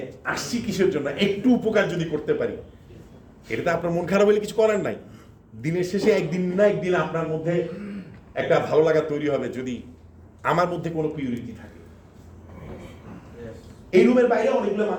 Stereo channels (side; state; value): both; identical; correlation 1.00